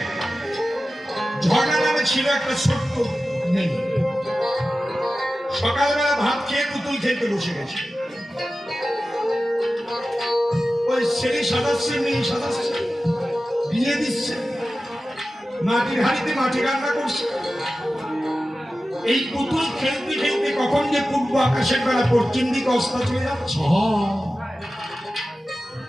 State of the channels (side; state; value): both; normal; correlation 0.95